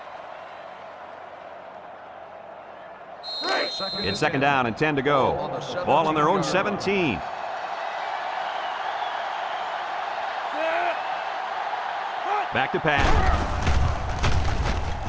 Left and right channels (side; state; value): both; identical; correlation 1.00